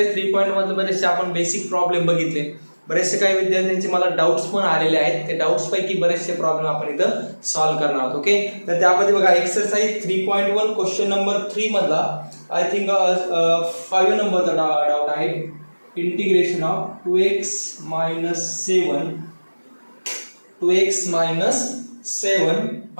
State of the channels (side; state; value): both; inverted; correlation -1.00